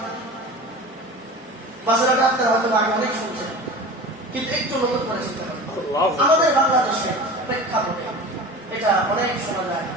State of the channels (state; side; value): normal; both; correlation 0.35